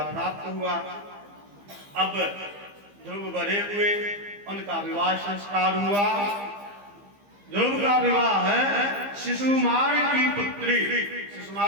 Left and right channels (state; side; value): late; left; 15 ms